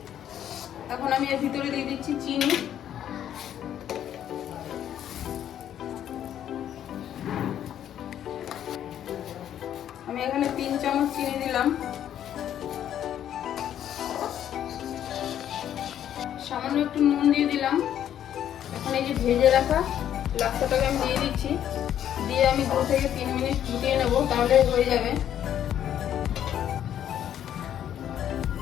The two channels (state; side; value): quieter; right; 10.4 dB